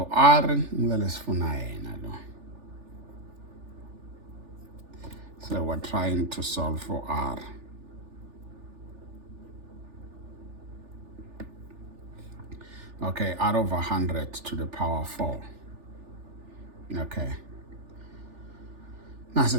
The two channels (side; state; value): left; late; 3.4 ms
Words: R. So we're trying to solve for R. Okay, R over 100 to the power 4. Okay. That's